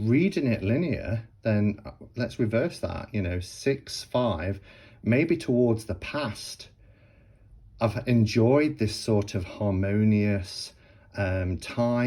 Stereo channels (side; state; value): both; identical; correlation 1.00